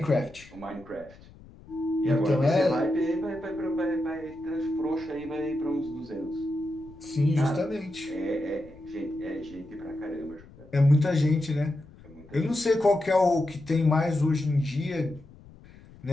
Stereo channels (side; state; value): left; noise; rumble, 22 dB below the sound